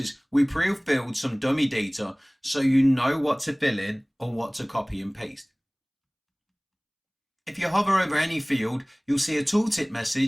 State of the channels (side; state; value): both; identical; correlation 1.00